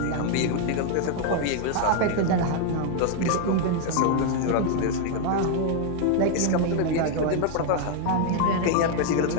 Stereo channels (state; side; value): different; both; correlation 0.00